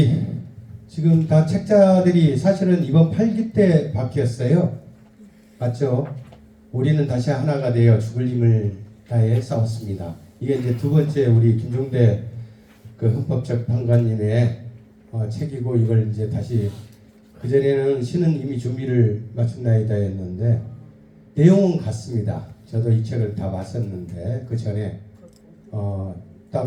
지금 다 책자들이 사실은 이번 8기 때 바뀌었어요. 맞죠? 우리는 다시 하나가 되어 죽을 힘을 다해 싸웠습니다. 이게 이제 두 번째 우리 김종대 그 헌법재판관님의 책이고, 이걸 이제 다시, 그전에는 시는 이미 준비를 마쳤나이다 했는데 내용은 같습니다. 저도 이 책을 다 봤었는데, 그 전에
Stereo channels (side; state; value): both; identical; correlation 1.00